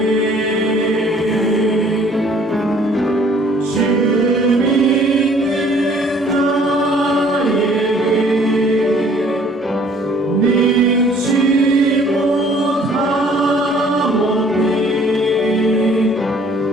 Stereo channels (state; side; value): normal; both; correlation 0.57